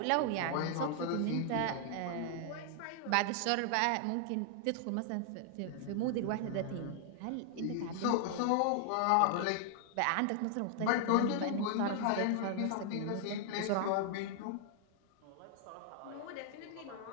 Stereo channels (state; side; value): different; both; correlation 0.00